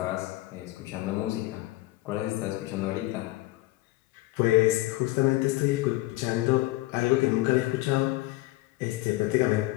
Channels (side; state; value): right; quieter; 18.6 dB